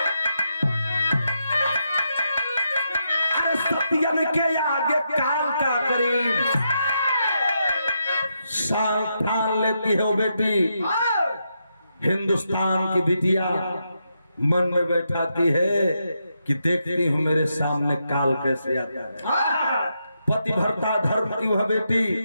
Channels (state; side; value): inverted; both; correlation -0.83